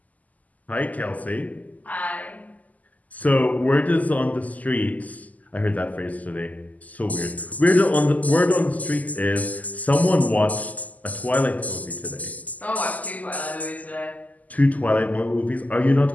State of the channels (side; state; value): right; late; 0.077 ms